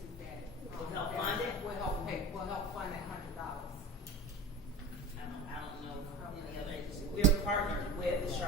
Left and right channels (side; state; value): both; normal; correlation 0.31